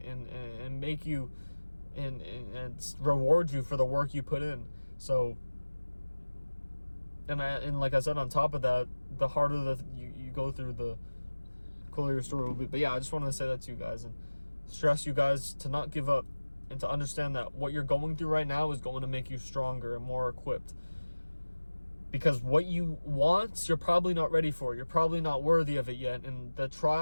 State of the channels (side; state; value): both; inverted; correlation -1.00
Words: make you and reward you for the work you put in. So and like I said, on top of that, the harder that you go through, the cooler your story will be. But yeah, I just wanted to say that to you guys and stress you guys to not give up, and to understand that what you're going through right now is going to make you stronger and more equipped. Because what you want, you're probably not ready for. You're probably not worthy of it yet. And the